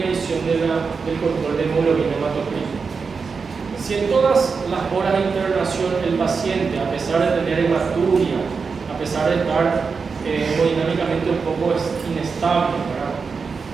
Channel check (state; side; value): quieter; left; 5.1 dB